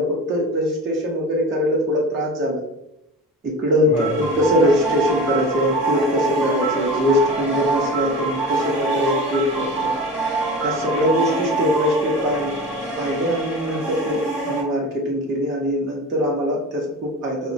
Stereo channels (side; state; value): both; normal; correlation 0.32